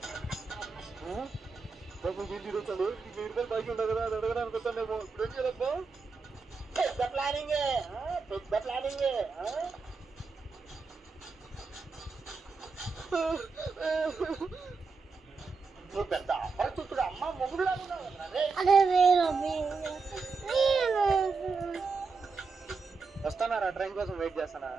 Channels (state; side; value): quieter; left; 4.6 dB